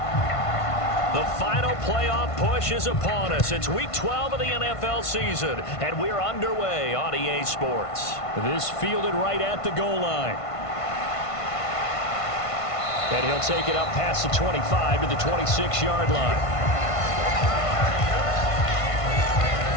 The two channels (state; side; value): late; right; 1.5 ms